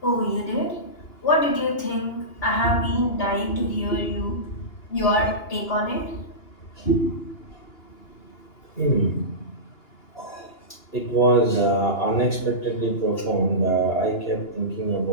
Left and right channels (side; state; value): right; late; 2.9 ms